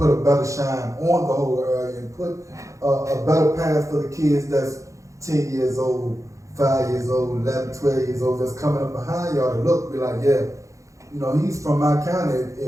a better shine on the whole area and put a better path for the kids that's 10 years old, 5 years old, 11, 12 years old, that's coming up behind y'all to look, be like, yeah, you know, he's from my county.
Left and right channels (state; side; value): late; left; 0.15 ms